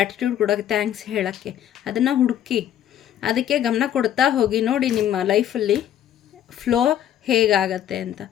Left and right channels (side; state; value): right; quieter; 10.8 dB